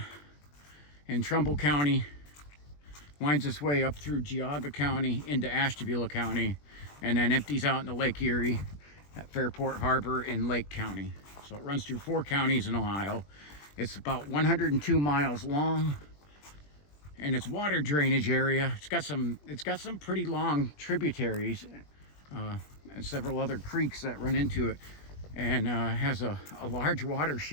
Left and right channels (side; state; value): right; late; 21 ms